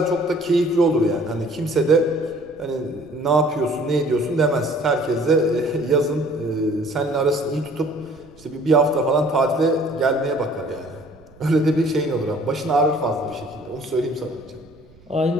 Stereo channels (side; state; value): right; noise; rumble, 26 dB below the sound